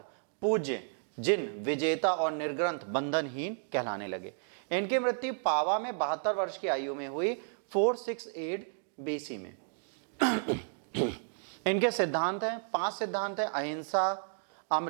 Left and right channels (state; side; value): silent; left; digital silence